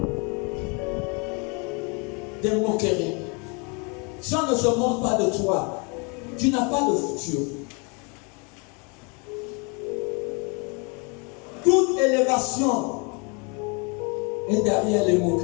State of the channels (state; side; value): quieter; right; 32.9 dB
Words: Des moqueries. Si on ne se moque pas de toi, tu n'as pas de futur. Toute élévation est derrière les